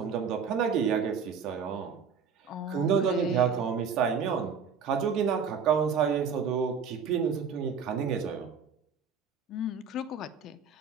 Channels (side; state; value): left; quieter; 6.1 dB